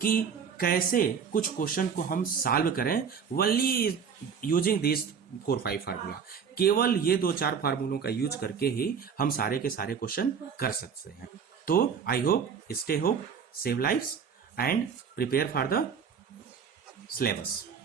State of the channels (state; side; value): quieter; left; 6.7 dB